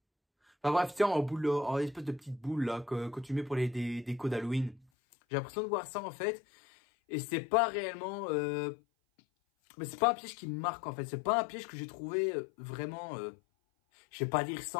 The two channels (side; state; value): right; drops out; at 4.9 s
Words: Enfin bref, tiens, en espèce de petite boule là, que tu mets pour les décos d'Halloween. J'ai l'impression de voir ça en fait. Et c'est pas réellement... mais c'est pas un piège qui me marque en fait. C'est pas un piège que j'ai trouvé vraiment... je vais pas dire